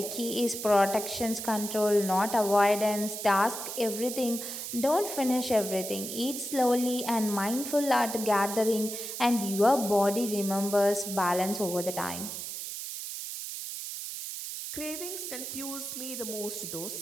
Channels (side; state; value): right; noise; hiss, 7 dB below the sound